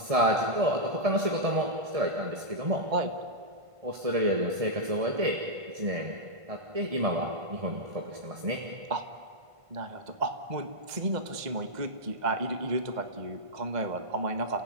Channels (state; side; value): late; left; 1.5 ms